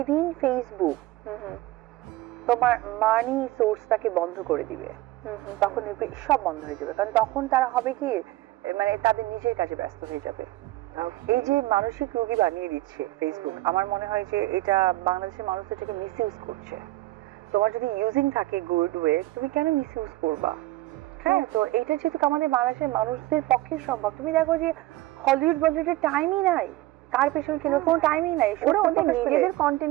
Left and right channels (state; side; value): quieter; left; 17.7 dB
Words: ফেসবুক তোমার মানি সোর্সটাকে বন্ধ করে দিবে তখন দেখবে সব বন্ধ হয়ে যাবে, কারণ তখন তারা হবে কি মানে তাদের নিজের কাজে ব্যস্ত হয়ে যাবে। এই যে মানসিক রোগী বানিয়ে দিচ্ছে ফেসবুক, আমার মনে হয় যে এটা বাংলাদেশের মানুষ এটাকে মিস ইউজ করছে। তোমার যদি ইউজিং থাকে গুড ওয়ে, তুমি কেন মিস ইউজ করবা? হ্যাঁ, তো এইটা যেহেতু আমাদের বাংলাদেশের মানুষদের পক্ষে সম্ভব। তুমি দেখো যে হলিউড বলিউডের টাইমই নাই, কার পেছনে কেন কোনো টাইমই নাই, ওরা ওদের নিজেদের